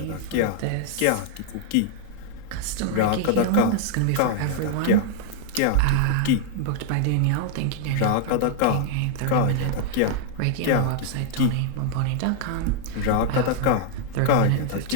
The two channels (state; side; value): different; both; correlation -0.01